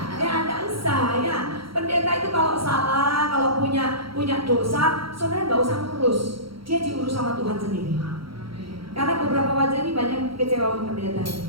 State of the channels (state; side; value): late; left; 0.75 ms